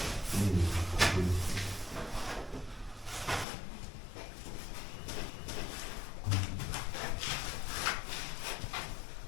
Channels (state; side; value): drops out; right; at 3.5 s